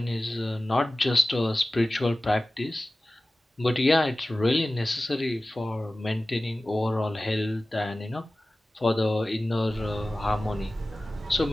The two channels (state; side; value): normal; both; correlation 0.97